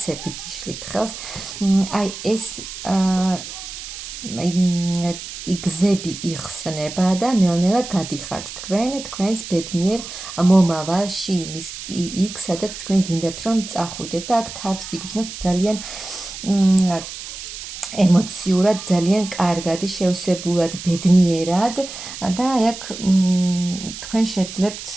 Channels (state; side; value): noise; right; hiss, 10 dB below the sound